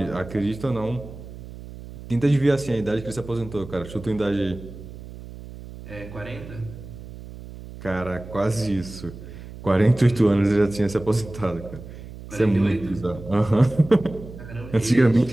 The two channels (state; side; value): noise; right; hum, 14 dB below the sound